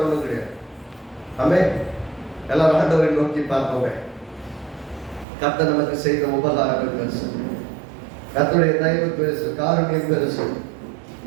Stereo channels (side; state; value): left; drops out; at 5.2 s